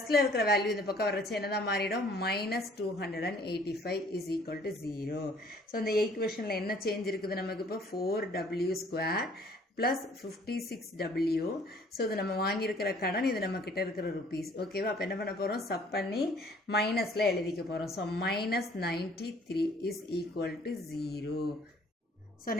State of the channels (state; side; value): normal; both; correlation 0.57